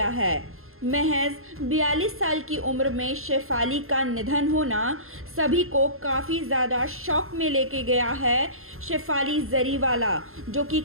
है। महज 42 साल की उम्र में शेफाली का निधन होना सभी को काफ़ी ज़्यादा शॉक में लेके गया है। शेफाली जरीवाला जो कि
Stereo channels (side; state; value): left; late; 0.61 ms